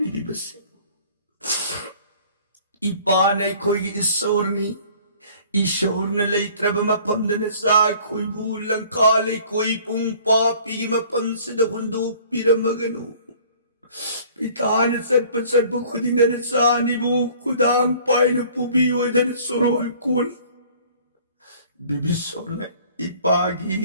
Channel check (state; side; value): inverted; both; correlation -0.52